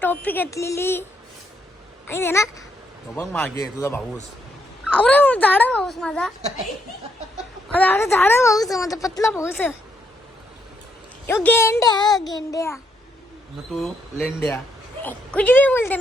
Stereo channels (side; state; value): both; normal; correlation 0.75